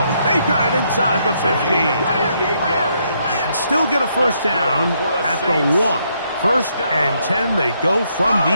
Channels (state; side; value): inverted; both; correlation -0.74